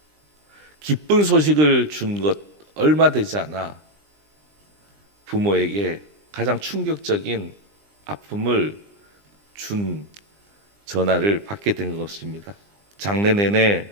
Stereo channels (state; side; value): late; left; 20 ms